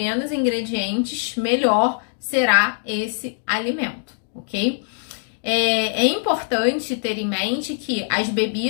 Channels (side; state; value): right; silent; digital silence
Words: ingredientes, melhor será esse alimento, ok? É importante ter em mente que as